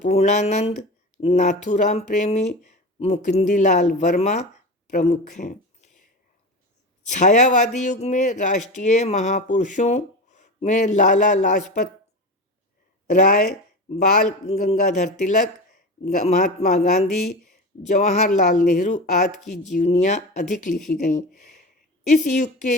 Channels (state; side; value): normal; both; correlation 0.26